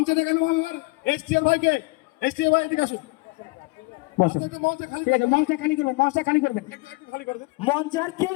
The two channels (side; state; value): right; quieter; 26.5 dB